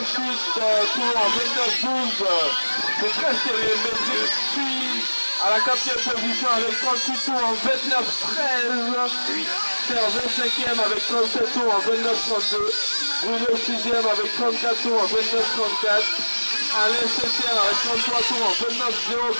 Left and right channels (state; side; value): inverted; both; correlation -1.00